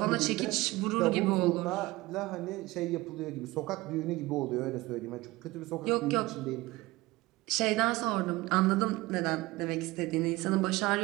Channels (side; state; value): left; quieter; 20.2 dB